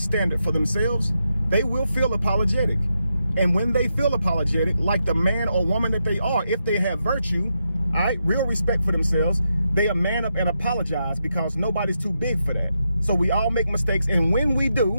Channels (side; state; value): both; inverted; correlation -0.85